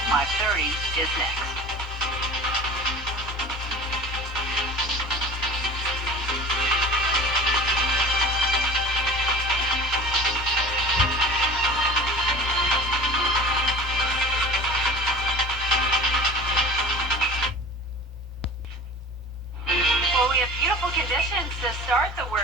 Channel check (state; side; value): normal; both; correlation 0.40